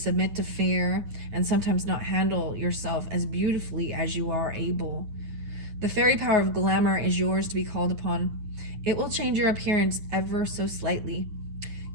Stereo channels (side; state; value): left; late; 9.5 ms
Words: to fear and sometimes not handle yourself as beautifully as you are able. The fairy power of glamour is yours to be called upon. It will change your appearance ever so slightly.